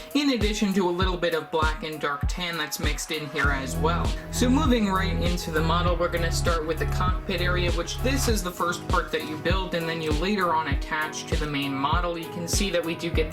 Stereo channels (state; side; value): identical; both; correlation 1.00